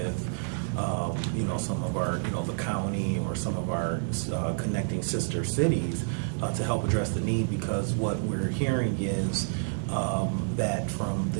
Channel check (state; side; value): silent; left; digital silence